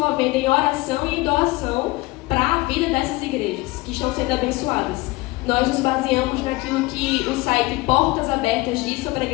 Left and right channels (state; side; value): quieter; right; 21.6 dB